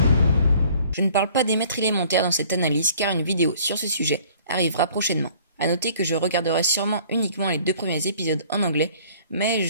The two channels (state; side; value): inverted; both; correlation -0.55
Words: Je ne parle pas des maîtres élémentaires dans cette analyse car une vidéo sur ce sujet arrivera prochainement. À noter que je regarderai sûrement uniquement les 2 premiers épisodes en anglais, mais